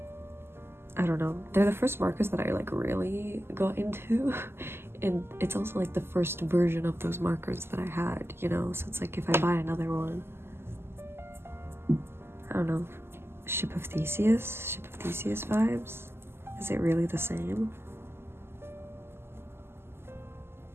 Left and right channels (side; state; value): left; late; 0.12 ms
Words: I don't know. They're the first markers that I like really got into, and it's also like the first version of those markers that I had, you know? So it's like if I buy another one, I don't know. Ship of Theseus vibes? Is it really the same?